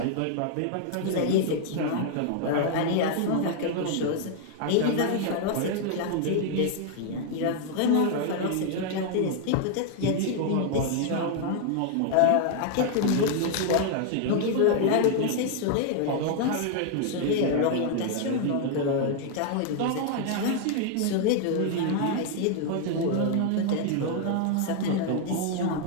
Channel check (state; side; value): different; both; correlation 0.00